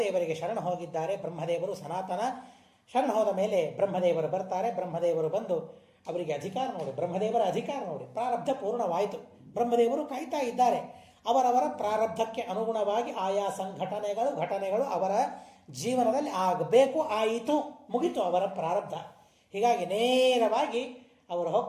ಶರಣ ಹೋಗಿದ್ದಾರೆ. ಬ್ರಹ್ಮದೇವರು ಸನಾತನ. ಶರಣ ಹೋದ ಮೇಲೆ ಬ್ರಹ್ಮದೇವರು ಬರ್ತಾರೆ. ಬ್ರಹ್ಮದೇವರು ಬಂದು ಅವರಿಗೆ ಅಧಿಕಾರ ನೋಡಿ, ಬ್ರಹ್ಮದೇವರ ಅಧಿಕಾರ ನೋಡಿ, ಪ್ರಾರಬ್ಧ ಪೂರ್ಣವಾಯಿತು. ಬ್ರಹ್ಮದೇವರು ಕಾಯ್ತಾ ಇದ್ದಾರೆ. ಅವರವರ ಪ್ರಾರಬ್ಧಕ್ಕೆ ಅನುಗುಣವಾಗಿ ಆಯಾ ಘಟನೆಗಳು ಅವರ ಜೀವನದಲ್ಲಿ ಆಗಬೇಕು, ಆಯಿತು, ಮುಗಿತು ಅವರ ಪ್ರಾರಬ್ಧ. ಹೀಗಾಗಿ ನೇರವಾಗಿ ಅವರು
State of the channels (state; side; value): identical; both; correlation 1.00